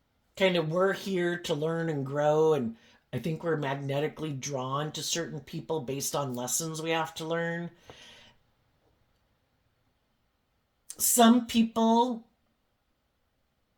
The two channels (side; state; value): both; identical; correlation 1.00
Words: kind of, we're here to learn and grow, and I think we're magnetically drawn to certain people based on lessons we have to learn. Some people